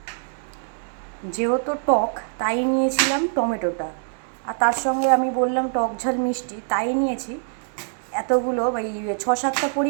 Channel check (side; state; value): left; silent; 61 dB below the other